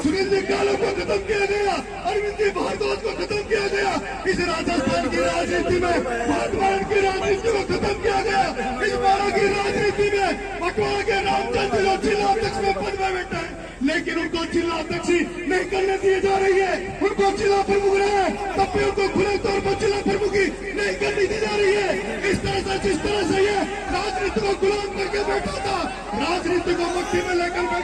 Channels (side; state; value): both; identical; correlation 1.00